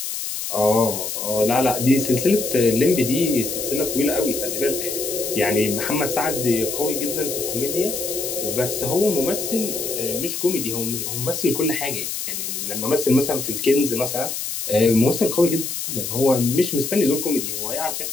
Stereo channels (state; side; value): noise; left; hiss, 4 dB below the sound